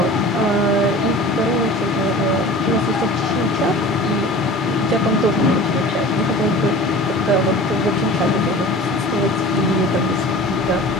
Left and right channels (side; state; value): both; normal; correlation 0.40